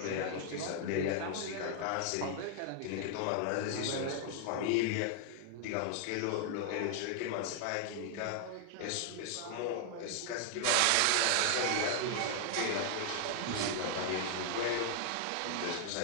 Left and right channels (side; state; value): both; different; correlation 0.00